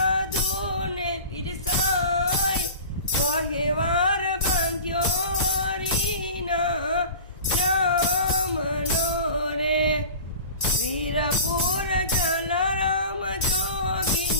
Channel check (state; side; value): inverted; both; correlation -0.37